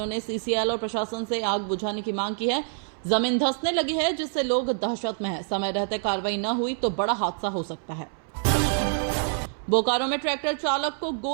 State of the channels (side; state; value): left; silent; 61 dB below the other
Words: ने सीसीएल और प्रशासन से आग बुझाने की मांग की है। जमीन धंसने लगी है, जिससे लोग दहशत में हैं। समय रहते कार्रवाई न हुई तो बड़ा हादसा हो सकता है। बोकारो में ट्रैक्टर चालक को